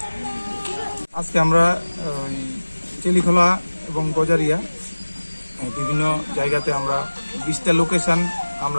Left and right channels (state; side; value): inverted; both; correlation -1.00